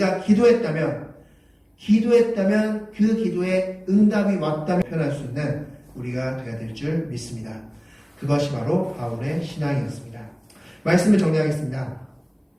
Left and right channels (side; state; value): both; identical; correlation 1.00